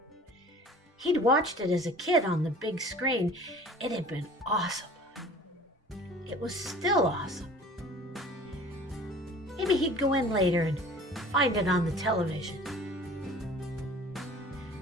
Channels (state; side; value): normal; both; correlation 0.45